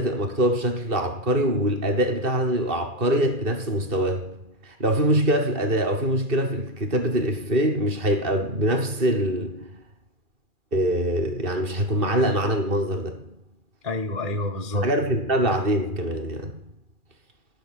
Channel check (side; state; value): left; late; 2.4 ms